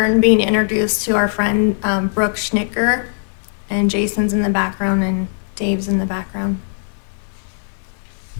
being introduced to our friend Brooke Schnicker, and Jason's in the background and Dave's in the background.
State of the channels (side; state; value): right; silent; digital silence